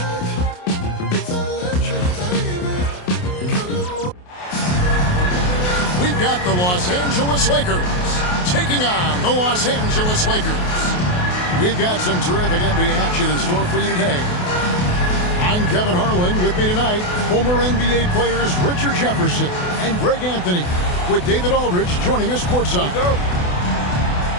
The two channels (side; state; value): right; late; 28 ms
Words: It's electric, baby. We've got the Los Angeles Lakers taking on the Los Angeles Lakers. We've got some terrific NBA action in store for you today. I'm Kevin Harlan. With me tonight, former NBA players Richard Jefferson and Greg Anthony, with David Aldridge joining us courtside.